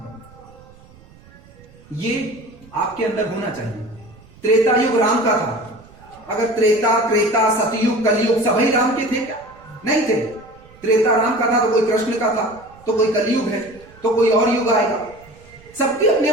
दो। ये आपके अंदर होना चाहिए। त्रेता युग राम का था। अगर त्रेता सतयुग कलयुग सभी राम के थे क्या? नहीं थे। त्रेता राम का था तो कोई कृष्ण का था, तो कोई कलयुग है, तो कोई और युग आएगा। सबकी अपनी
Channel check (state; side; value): noise; right; rumble, 24 dB below the sound